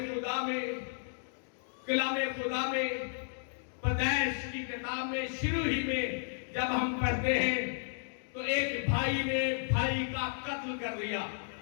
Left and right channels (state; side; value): silent; right; digital silence